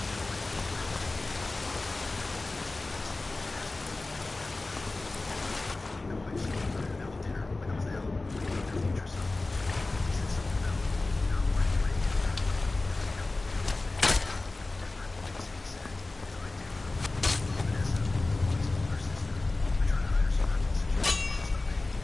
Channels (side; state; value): right; quieter; 3.2 dB